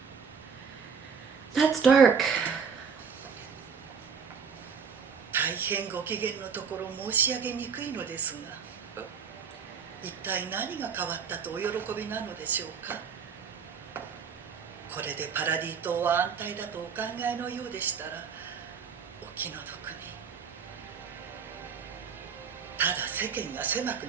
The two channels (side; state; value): left; quieter; 6.3 dB